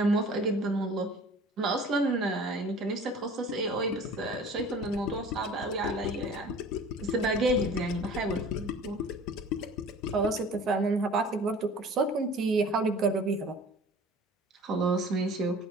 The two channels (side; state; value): both; normal; correlation 0.45